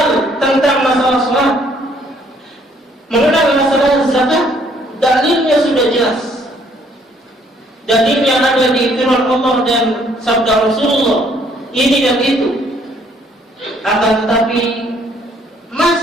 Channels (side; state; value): both; normal; correlation 0.64